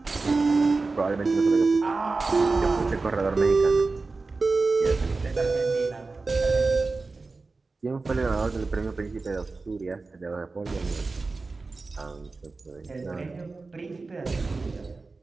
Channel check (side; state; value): left; quieter; 3.8 dB